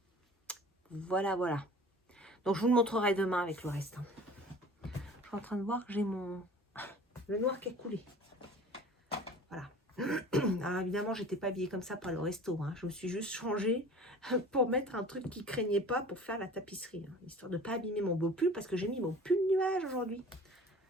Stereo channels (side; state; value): both; normal; correlation 0.44